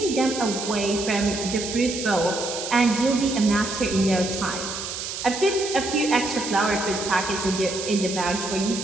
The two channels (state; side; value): noise; right; hiss, 6 dB below the sound